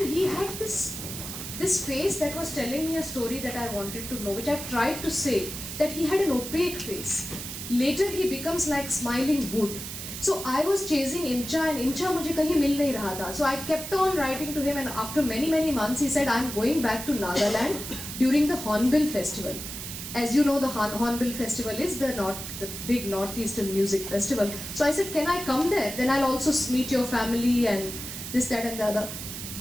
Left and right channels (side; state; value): right; noise; hiss, 8 dB below the sound